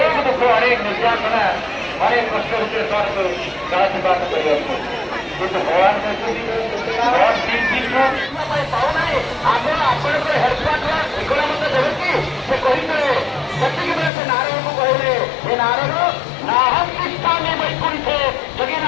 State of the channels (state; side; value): drops out; right; at 14.1 s